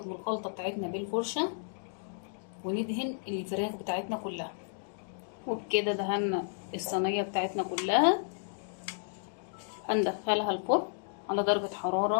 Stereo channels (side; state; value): right; silent; digital silence